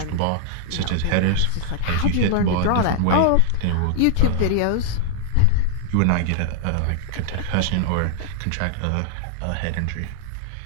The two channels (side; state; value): both; different; correlation 0.00